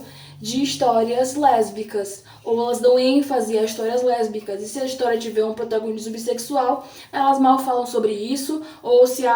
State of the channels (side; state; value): both; identical; correlation 1.00